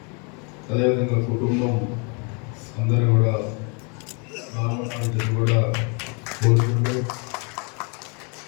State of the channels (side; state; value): right; quieter; 34.8 dB